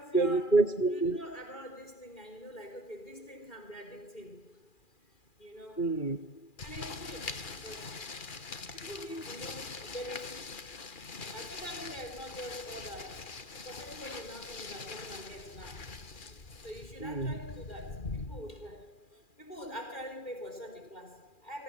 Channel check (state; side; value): late; right; 2.4 ms